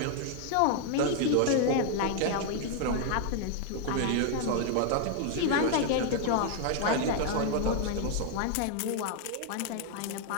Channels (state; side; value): different; both; correlation 0.00